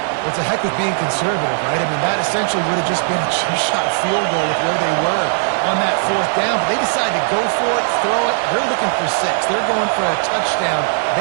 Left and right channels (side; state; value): left; silent; digital silence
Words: What's the heck with being conservative, right? I mean, that essentially would have just been a two-shot field goal with where they were on that 4th down. But they decided to go for it, throw it. They're looking for 6. They're going for a touchdown.